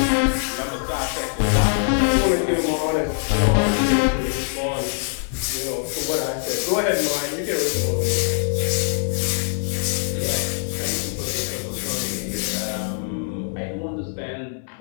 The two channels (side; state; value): right; silent; 63 dB below the other